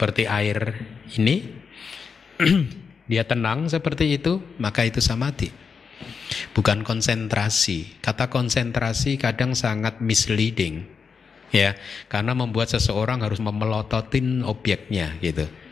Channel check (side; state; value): right; quieter; 5.7 dB